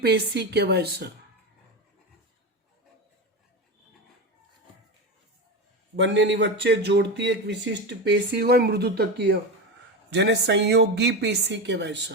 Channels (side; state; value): both; normal; correlation 0.19